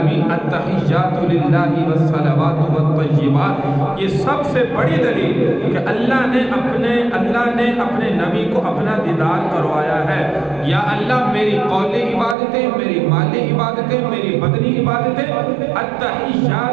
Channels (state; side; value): drops out; left; at 12.4 s